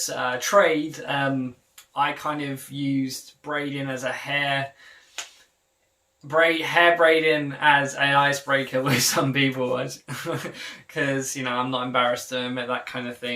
trade, I kind of used braiding as a hair braiding as an icebreaker with some people, because, you know, I'm not embarrassed to admit that kind of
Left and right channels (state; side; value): identical; both; correlation 1.00